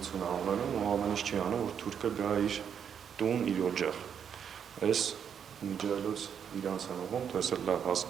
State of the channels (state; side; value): quieter; left; 7.9 dB